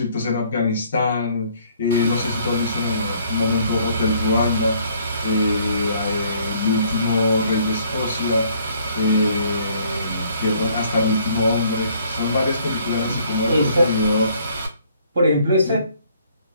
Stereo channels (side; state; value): both; inverted; correlation -0.62